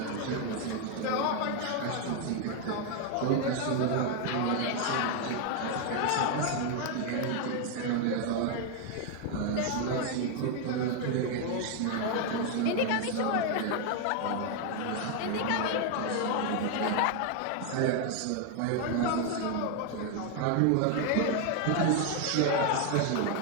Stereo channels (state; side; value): different; both; correlation 0.01